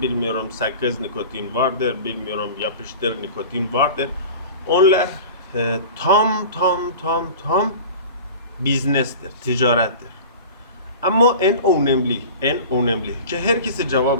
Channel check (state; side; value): inverted; both; correlation -0.37